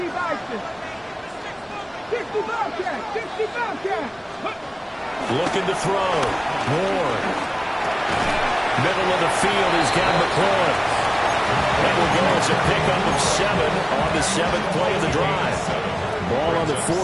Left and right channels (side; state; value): both; identical; correlation 1.00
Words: Bison. 60 Bobcat, 60 Bobcat. Looking to throw. Ward. Middle of the field, he's got McLaurin. That will go as a pickup of 7 on the 7th play of the drive. Ball on the